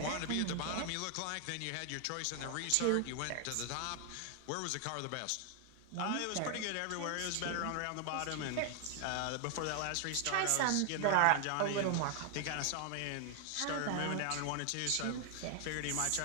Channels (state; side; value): different; both; correlation 0.00